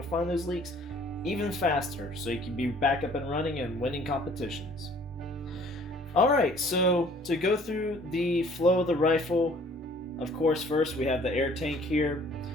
find those leaks even faster so you can be back up and running and winning competitions. Alright, so to go through the flow of the rifle, of course first we have the air tank here.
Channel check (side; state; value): both; normal; correlation 0.55